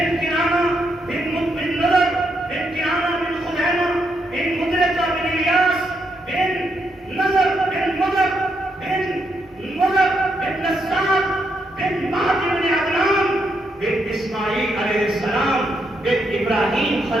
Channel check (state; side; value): normal; both; correlation 0.79